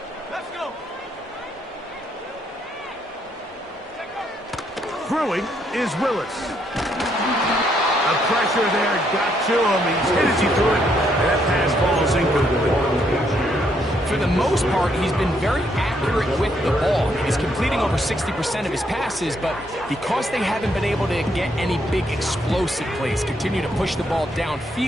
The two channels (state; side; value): normal; both; correlation 0.73